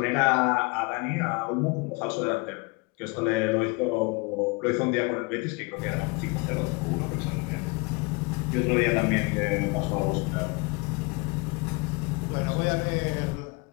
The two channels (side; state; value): right; quieter; 28.0 dB